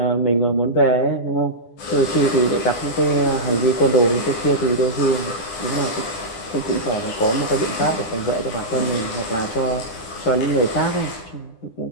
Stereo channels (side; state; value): right; late; 9.9 ms